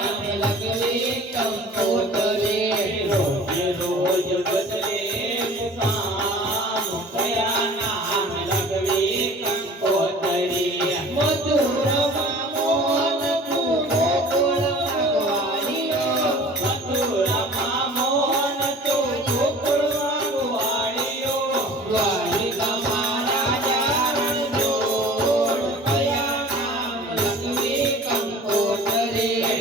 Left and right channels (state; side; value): normal; both; correlation 0.44